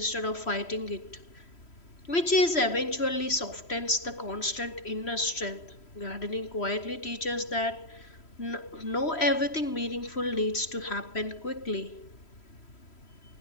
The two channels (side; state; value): right; late; 3.1 ms